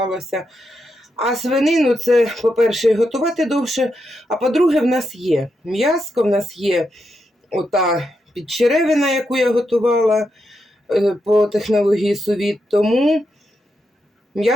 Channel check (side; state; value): both; normal; correlation 0.84